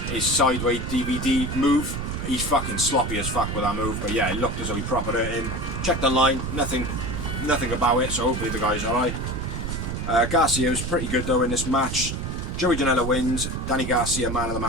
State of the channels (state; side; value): noise; right; rumble, 4 dB below the sound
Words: sideways DVD move. He's fucking sloppy as fuck with that move, but yeah, it looked as though he proper hurt him. Checked online, nothing about it, so hopefully the guy's alright. Garcia was pretty good though in this match. Joey Janela wins. Danny Garcia, man of the